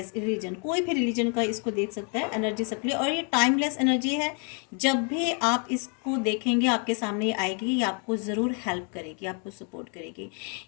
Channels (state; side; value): quieter; right; 38.5 dB